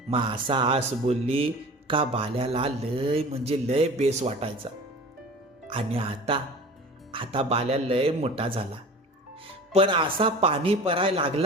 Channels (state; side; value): normal; both; correlation 0.39